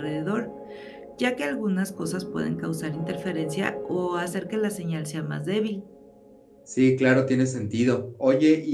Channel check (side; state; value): both; identical; correlation 1.00